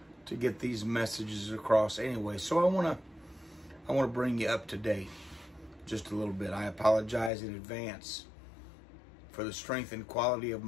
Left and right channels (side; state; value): right; drops out; at 7.3 s